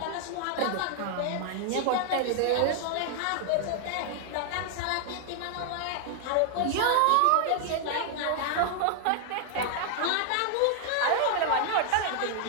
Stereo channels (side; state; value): both; different; correlation 0.00